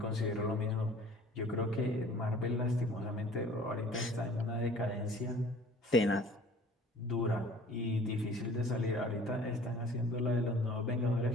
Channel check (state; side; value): normal; both; correlation 0.49